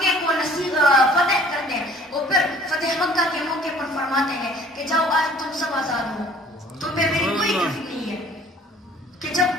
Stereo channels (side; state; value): both; normal; correlation 0.54